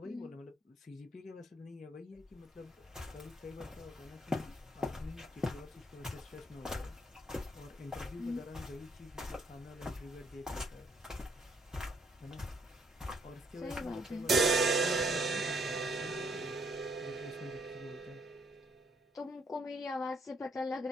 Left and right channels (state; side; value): normal; both; correlation 0.69